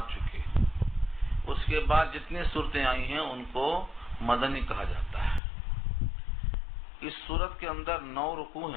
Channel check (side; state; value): right; drops out; at 5.4 s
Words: چکے، اس کے بعد جتنی صورتیں آئی ہیں ان کو مدنی کہا جاتا ہے. اس سورت کے اندر 9 رکوع